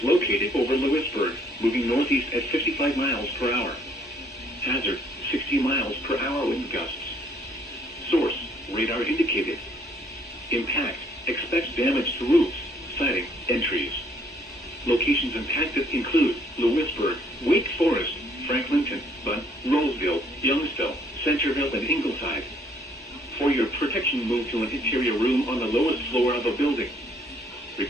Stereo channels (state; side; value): normal; both; correlation 0.64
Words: located over Lewisburg, moving northeast at 55 miles per hour. Hazard, 60 miles per hour wind gusts. Source, radar indicated. Impact, expect damage to roofs, siding, and trees. Locations impacted include Lewisburg, Wake Forest, Franklinton, Bunn, Roseville, Youngsville, Centerville, and Ingleside. For your protection, move to an interior room on the lowest floor of a building.